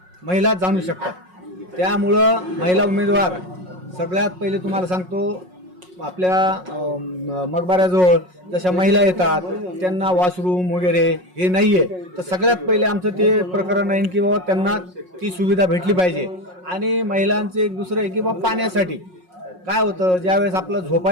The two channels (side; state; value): left; late; 5.5 ms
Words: महिला जाणू शकतात, त्यामुळं महिला उमेदवार सगळ्यात पहिले तुम्हाला सांगतो आपल्या मकबऱ्याजवळ जशा महिला येतात त्यांना वॉशरूम वगैरे हे नाही आहे, तर सगळ्यात पहिले आमचं ते प्रकरण आहे की बाबा त्यांना ती सुविधा भेटली पाहिजे. आणि महिलांचं एक दुसरं आहे की बाबा पाण्यासाठी काय होतं, ज्यावेळेस आपलं